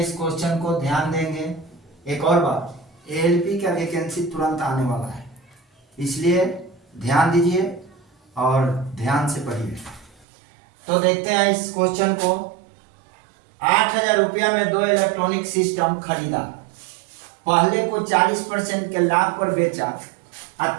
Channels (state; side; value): drops out; left; at 10.2 s